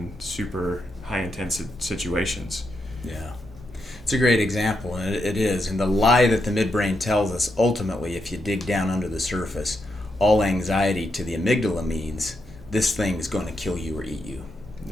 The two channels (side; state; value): both; normal; correlation 0.83